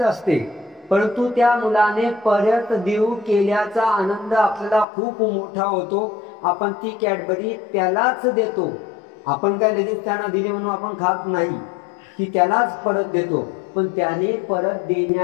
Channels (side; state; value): right; drops out; at 4.9 s